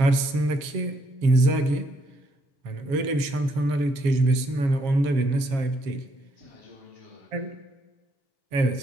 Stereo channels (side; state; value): left; late; 7.3 ms